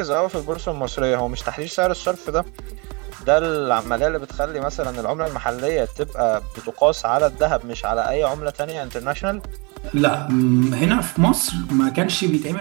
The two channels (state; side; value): quieter; left; 30.4 dB